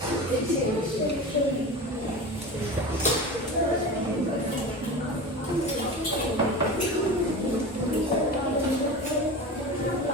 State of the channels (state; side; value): normal; both; correlation 0.30